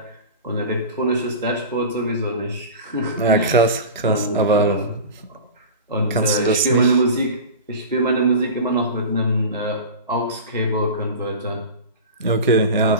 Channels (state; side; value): inverted; both; correlation -0.31